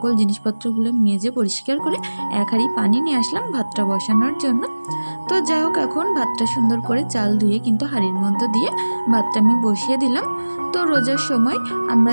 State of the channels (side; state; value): both; inverted; correlation -1.00